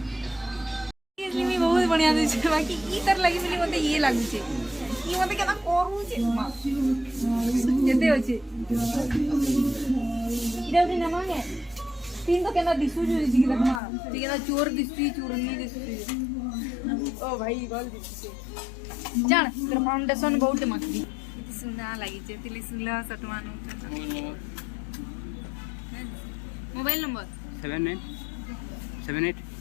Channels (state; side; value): drops out; right; at 13.8 s